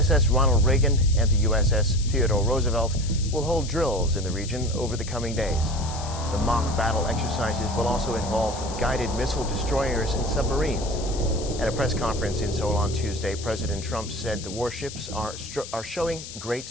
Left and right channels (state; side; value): noise; left; hiss, 12 dB below the sound